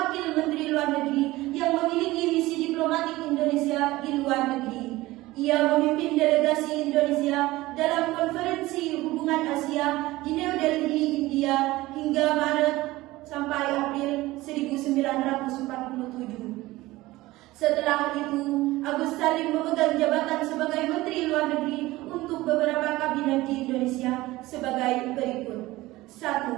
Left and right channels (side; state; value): left; quieter; 18.6 dB